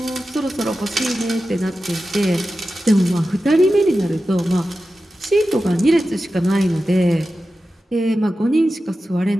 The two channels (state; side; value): normal; both; correlation 0.93